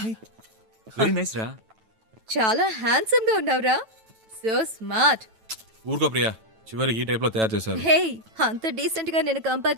వెరీ నైస్ రా. చాలా హ్యాండ్సమ్ గా ఉన్నావురా. So smart. ఊరుకో ప్రియా, చివరికి ఈ టైప్లో తయారు చేశారు. హే, అంత డీసెంట్ గా నేను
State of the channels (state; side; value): late; left; 9.1 ms